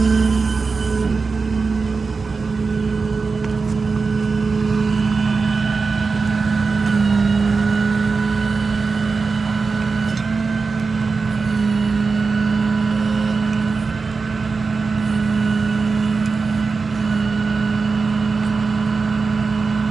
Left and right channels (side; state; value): left; quieter; 4.5 dB